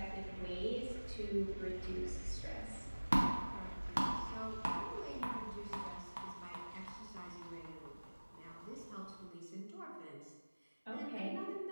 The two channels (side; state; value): both; inverted; correlation -1.00